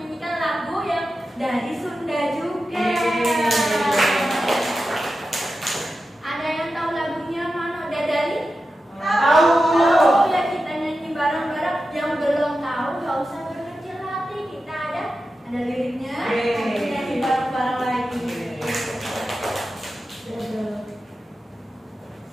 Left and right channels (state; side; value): normal; both; correlation 0.92